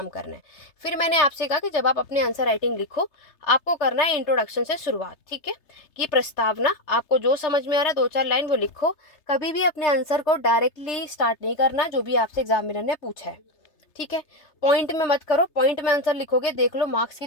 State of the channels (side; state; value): right; late; 3.3 ms